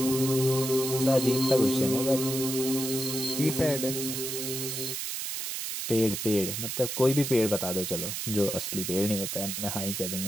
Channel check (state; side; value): noise; right; hiss, 4 dB below the sound